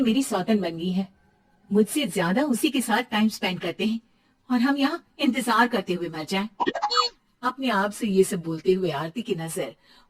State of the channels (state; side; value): identical; both; correlation 1.00